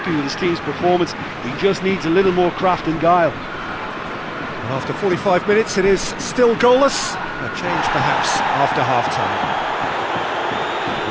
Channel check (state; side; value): identical; both; correlation 1.00